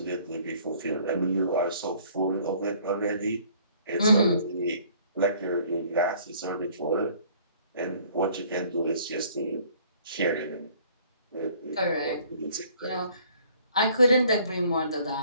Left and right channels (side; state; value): both; inverted; correlation -0.57